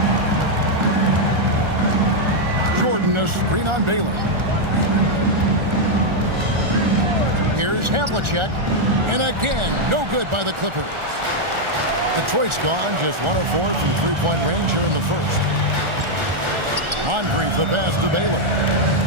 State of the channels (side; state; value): left; late; 1.4 ms